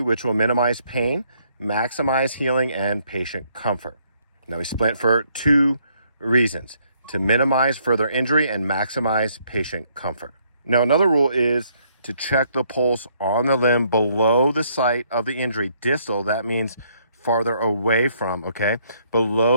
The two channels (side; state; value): both; inverted; correlation -0.69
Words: will minimize pain, maximize healing, and patient comfort. Now we splint for two reasons: to minimize further injury and maximize patient comfort. Now another rule is to check the pulse on the limb below the site of the injury. Distal, that means farther away from, okay,